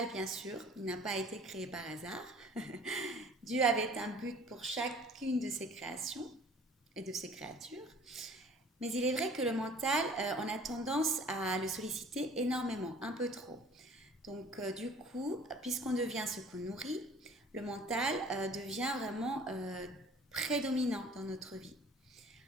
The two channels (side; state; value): both; normal; correlation 0.50